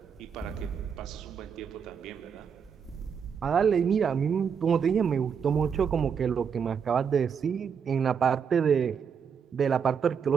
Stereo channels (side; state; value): left; quieter; 6.9 dB